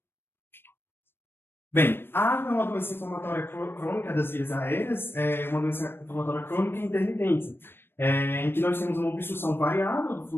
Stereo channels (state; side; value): late; right; 0.10 ms